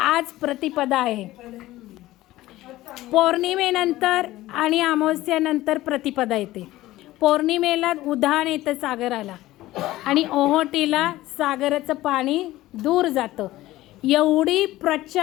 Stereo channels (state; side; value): quieter; right; 16.5 dB